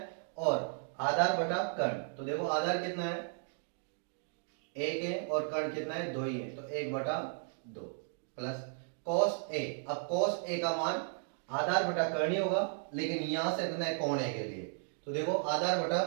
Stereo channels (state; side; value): silent; left; 54 dB below the other